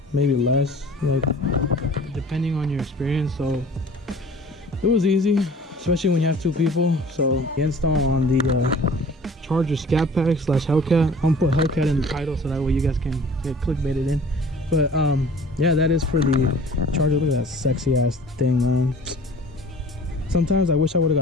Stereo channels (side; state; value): both; normal; correlation 0.46